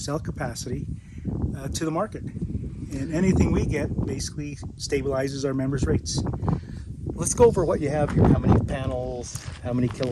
capacity to the market. And anything we get basically stabilizes our members' rates. Let's go over what you have here. How many panels, how many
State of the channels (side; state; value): both; identical; correlation 1.00